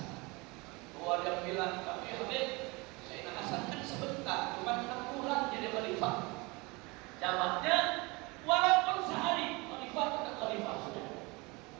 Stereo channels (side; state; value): left; quieter; 25.8 dB